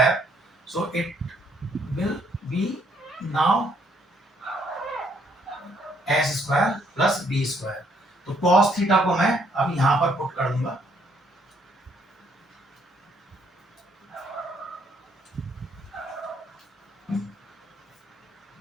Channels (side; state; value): both; normal; correlation 0.68